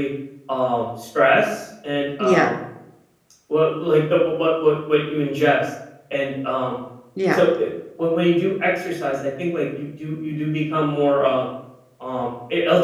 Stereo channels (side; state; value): both; identical; correlation 1.00